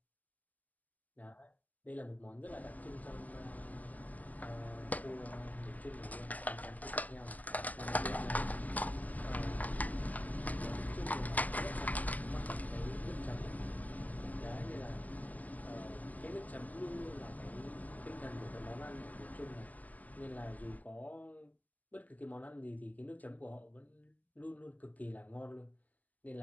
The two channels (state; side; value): late; right; 0.079 ms